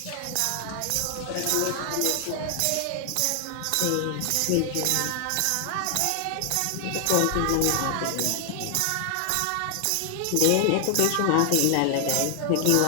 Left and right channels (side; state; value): both; different; correlation 0.00